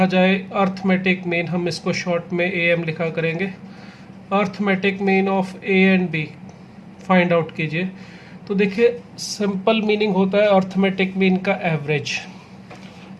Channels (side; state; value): both; identical; correlation 1.00